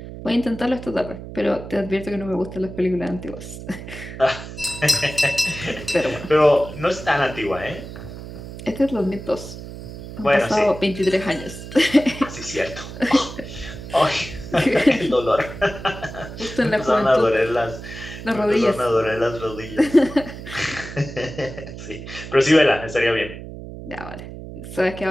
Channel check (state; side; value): noise; right; hum, 12 dB below the sound